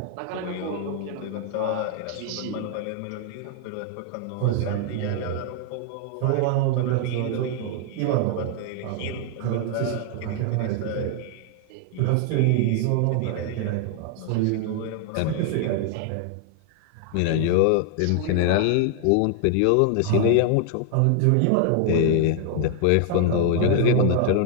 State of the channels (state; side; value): different; both; correlation 0.00